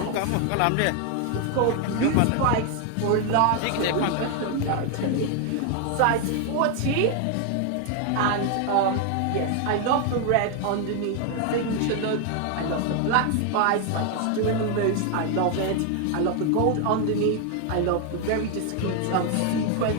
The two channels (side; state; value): both; different; correlation 0.01